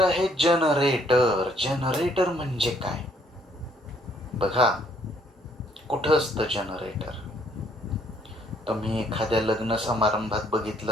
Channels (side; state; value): both; normal; correlation 0.66